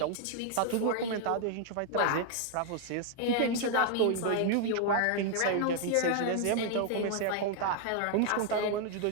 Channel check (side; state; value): both; different; correlation 0.00